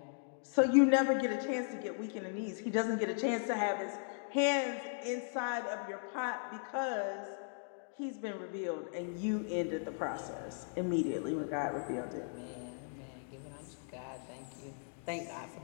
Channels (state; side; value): silent; right; digital silence